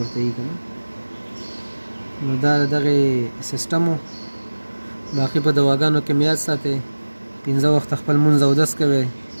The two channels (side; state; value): both; inverted; correlation -1.00